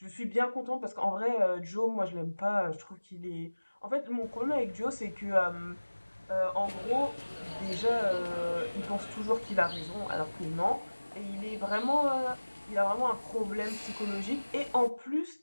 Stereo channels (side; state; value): both; inverted; correlation -1.00